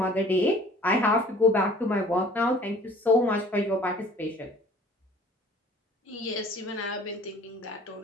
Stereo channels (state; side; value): normal; both; correlation 0.51